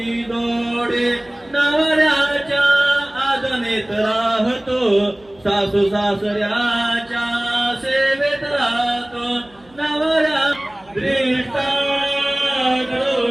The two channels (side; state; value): right; noise; hum, 29 dB below the sound